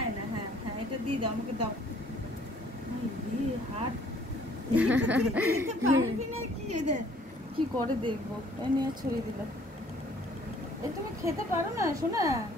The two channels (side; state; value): both; normal; correlation 0.58